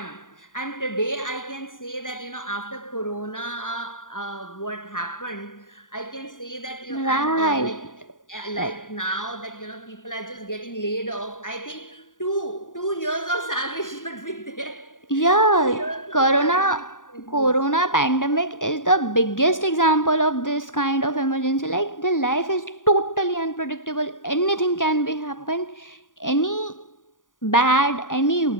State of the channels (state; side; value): late; right; 0.88 ms